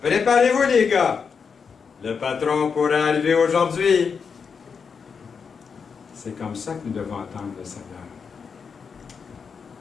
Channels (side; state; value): right; quieter; 5.9 dB